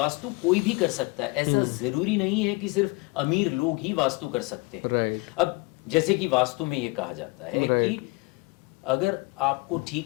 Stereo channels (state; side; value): quieter; right; 26.7 dB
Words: कोई भी कर सकता है। ऐसा जरूरी नहीं है कि सिर्फ अमीर लोग ही वास्तु कर सकते हैं। अब जैसे कि वास्तु में ये कहा जाता है कि अगर आपको